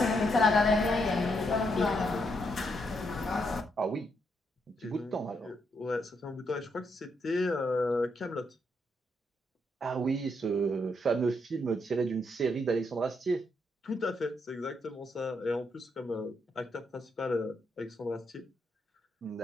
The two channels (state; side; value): normal; both; correlation 0.78